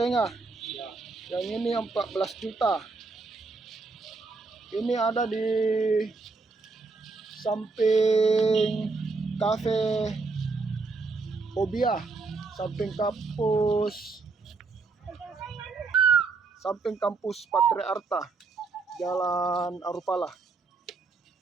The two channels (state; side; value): quieter; left; 4.1 dB